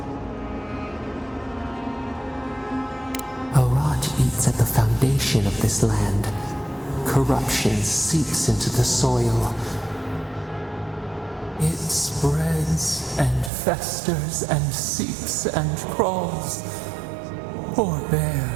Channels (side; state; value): left; drops out; at 13.5 s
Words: A rot eats at the foundation of this land. Corruption seeps into the soil. It spreads and festers and seeps and crawls. Poor bear,